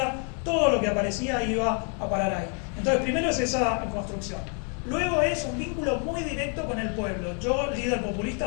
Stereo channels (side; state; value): right; quieter; 39.7 dB